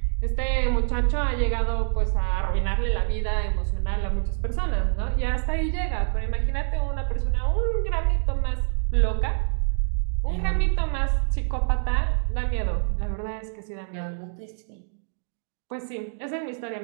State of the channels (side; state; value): left; silent; digital silence